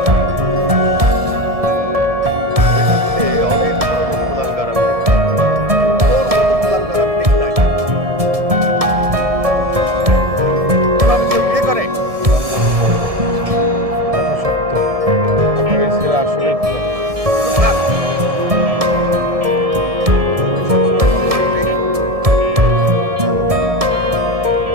পৃথিবীতে অনেক ধরনের কুলাঙ্গার আমি দেখেছি। তোর মতো কুলাঙ্গার আমি দেখি নাই। এভাবে কেউ বিয়ে করে? কথা সত্য, আপনার এই ছেলে আসলে থাক।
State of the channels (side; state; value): left; late; 1.7 ms